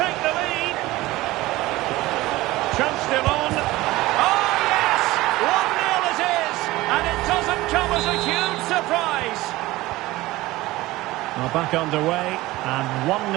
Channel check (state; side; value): quieter; left; 18.5 dB